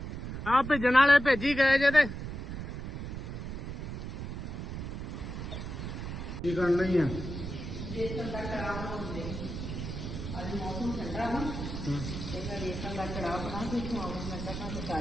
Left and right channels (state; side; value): noise; right; rumble, 6 dB below the sound